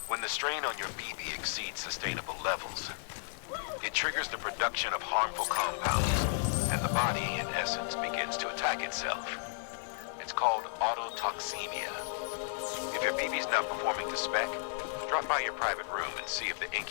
When the strain on your BB exceeds sustainable levels, it triggers the production of harmful compounds, and the body, in essence, begins to attack itself. It's called autotoxemia. If your BB's not performing to spec, drop by your private room and see if the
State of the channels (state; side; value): silent; right; digital silence